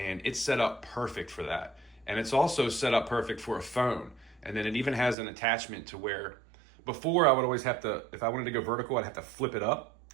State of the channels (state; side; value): drops out; left; at 5.2 s